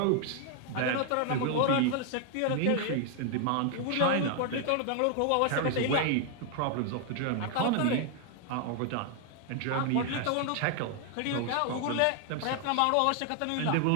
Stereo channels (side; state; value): both; different; correlation 0.00